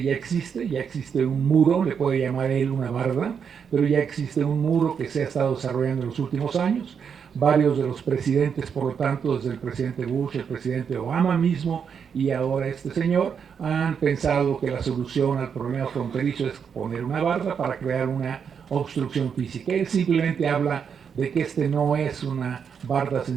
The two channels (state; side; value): quieter; left; 7.0 dB